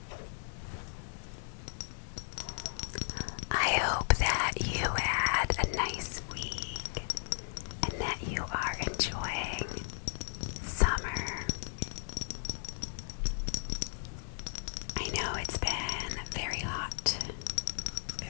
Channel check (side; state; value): right; silent; digital silence